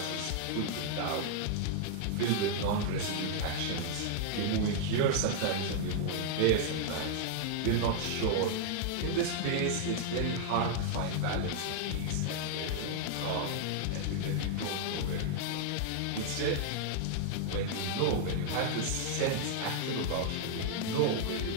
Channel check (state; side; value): different; both; correlation -0.01